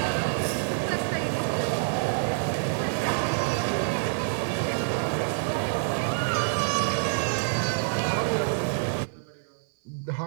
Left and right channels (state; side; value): silent; left; digital silence